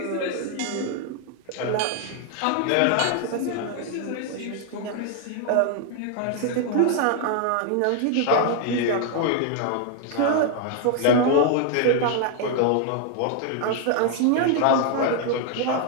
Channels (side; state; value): both; different; correlation 0.00